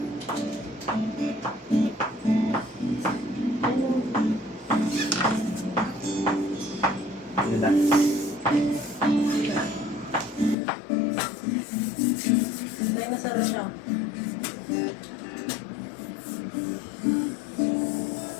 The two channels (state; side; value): drops out; right; at 10.6 s